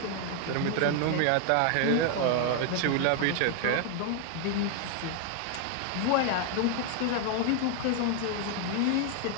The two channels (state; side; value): different; both; correlation 0.00